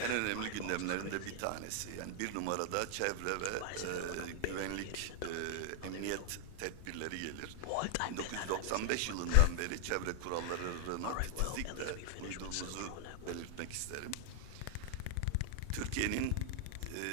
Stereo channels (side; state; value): both; different; correlation 0.00